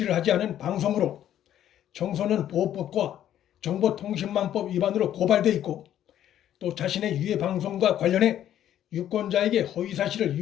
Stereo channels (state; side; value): quieter; right; 11.2 dB